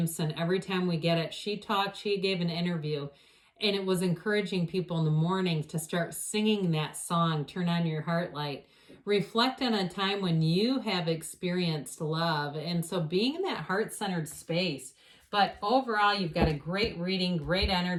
Every time we get it, she gave an interview, and it was encouraging people in the morning to start singing that song, Turn on Your Heart Light. Reflect on a time when you have experienced love. And so being in that heart-centered space. But overall, you've got a great reading, great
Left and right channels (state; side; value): identical; both; correlation 1.00